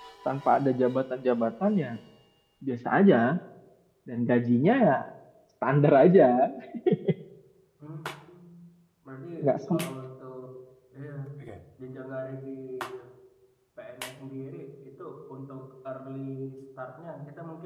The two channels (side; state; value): both; identical; correlation 1.00